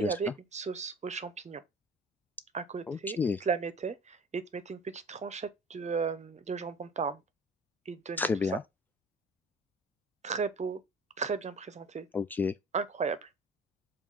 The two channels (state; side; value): normal; both; correlation 0.42